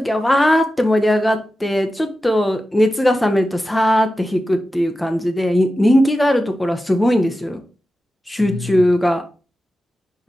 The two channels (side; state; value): both; normal; correlation 0.93